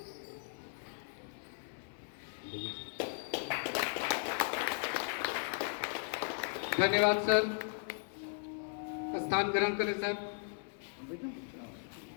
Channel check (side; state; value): right; silent; 53 dB below the other